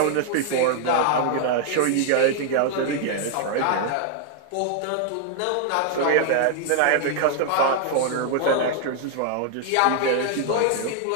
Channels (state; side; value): different; both; correlation 0.00